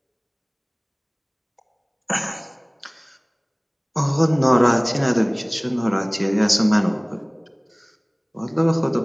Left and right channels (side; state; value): both; identical; correlation 1.00